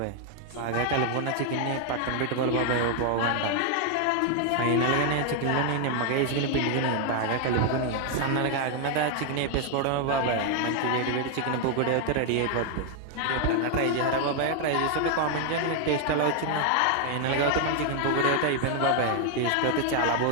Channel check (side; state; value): both; different; correlation 0.00